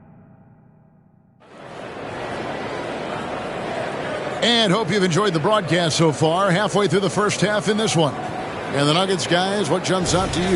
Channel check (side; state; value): both; identical; correlation 1.00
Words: And hope you've enjoyed the broadcast so far. Halfway through the first half in this one. And the Nuggets, guys, what jumps out to